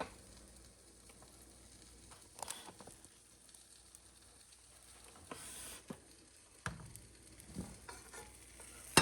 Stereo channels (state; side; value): identical; both; correlation 1.00